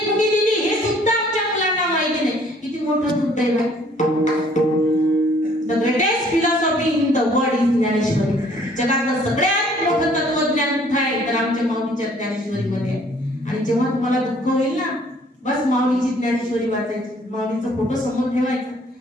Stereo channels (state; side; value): normal; both; correlation 0.59